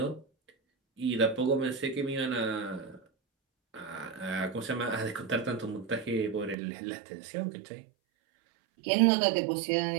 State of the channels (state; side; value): drops out; left; at 6.6 s